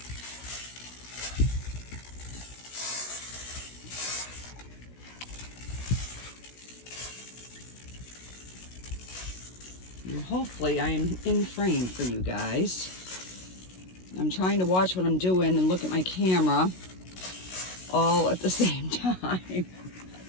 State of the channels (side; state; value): right; late; 16 ms